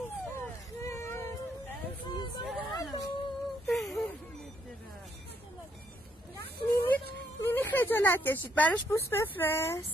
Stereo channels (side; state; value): both; normal; correlation 0.73